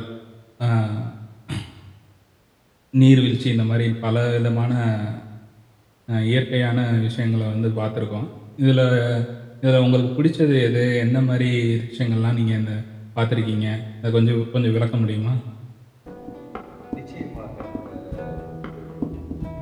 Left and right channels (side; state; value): both; identical; correlation 1.00